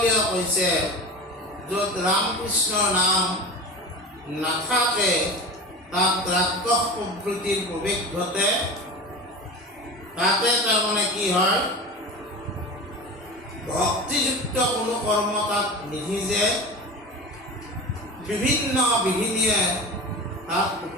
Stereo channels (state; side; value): normal; both; correlation 0.30